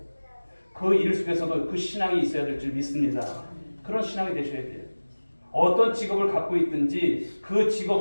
그 일 속에서도 그 신앙이 있어야 될 줄 믿습니다. 그런 신앙이 되셔야 돼요. 어떤 직업을 갖고 있든지 그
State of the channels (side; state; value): both; inverted; correlation -1.00